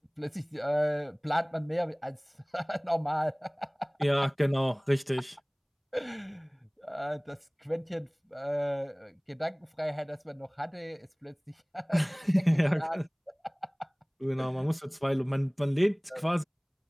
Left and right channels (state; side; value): identical; both; correlation 1.00